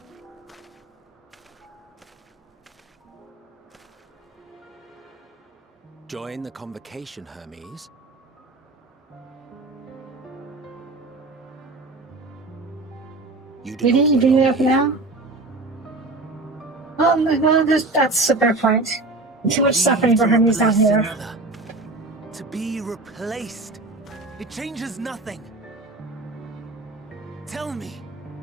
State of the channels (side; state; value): left; quieter; 3.1 dB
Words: Join the convocation, Hermes. You do Did not he bring it belong up here. now? Oh my god, that's a fair point. Too much suffering for Hermes down replace here. another. To be replaced. It changes nothing. Tell me,